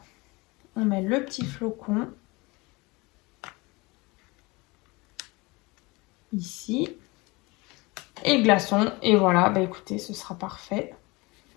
On met le petit flocon ici et le glaçon. Et voilà, bah écoutez, ce sera parfait.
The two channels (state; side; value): quieter; right; 24.4 dB